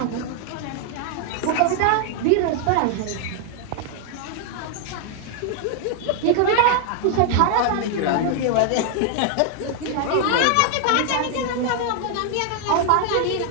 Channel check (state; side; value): different; both; correlation 0.00